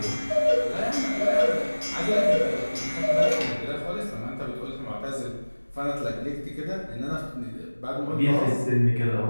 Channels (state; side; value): inverted; both; correlation -1.00